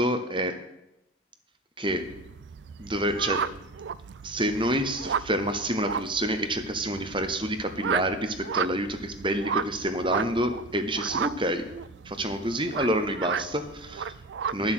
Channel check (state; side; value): normal; both; correlation 0.30